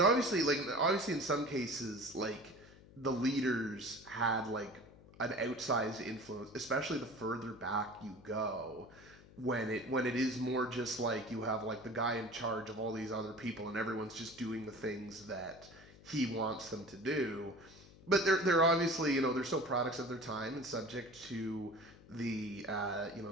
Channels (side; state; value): left; noise; hum, 22 dB below the sound